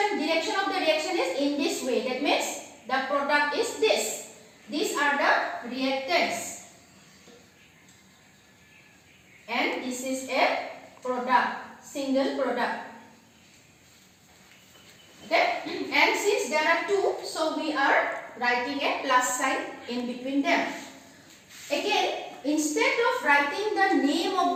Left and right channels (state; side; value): identical; both; correlation 1.00